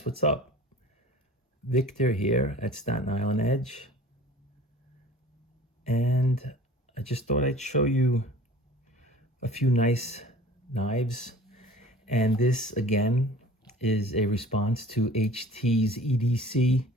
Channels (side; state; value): both; normal; correlation 0.45